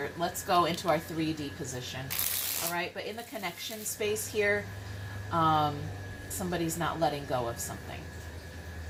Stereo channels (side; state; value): both; identical; correlation 1.00